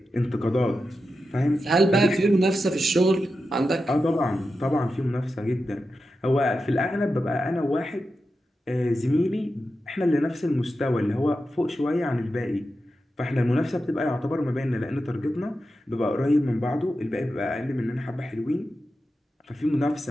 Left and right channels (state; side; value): normal; both; correlation 0.90